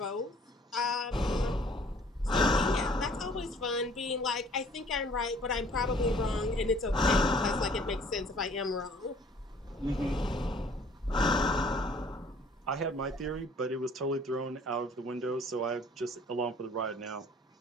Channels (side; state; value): both; normal; correlation 0.56